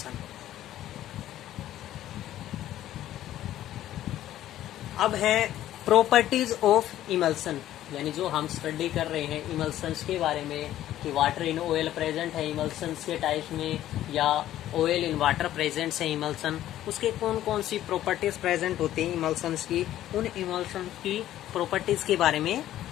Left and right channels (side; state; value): right; quieter; 13.0 dB